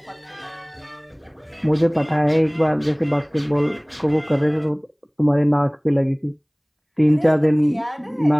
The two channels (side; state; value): both; identical; correlation 1.00